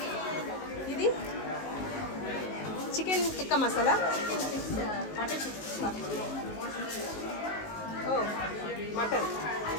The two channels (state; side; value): late; right; 19 ms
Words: ఇది chicken tikka masala. Butter chicken. ఓ మటన్.